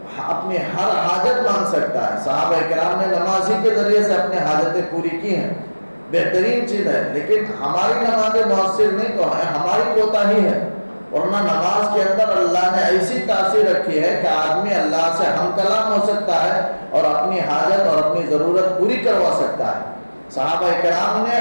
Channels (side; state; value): both; inverted; correlation -1.00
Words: اپنی ہر حاجت مانگ سکتا ہے. صحابہ کرام نے نماز ہی کے ذریعے سے اپنے حاجتیں پوری کی ہیں. بہترین چیز ہے. لیکن ہماری نمازیں مؤثر نہیں تو ہے, ہماری کوتاہی ہے. ورنہ نماز کے اندر اللہ نے ایسی تاثیر رکھی ہے کہ آدمی اللہ سے ہم کلام ہو سکتا ہے اور اپنی حاجت اور اپنی ضرورت پوری کروا سکتا ہے. صحابہ کرام نے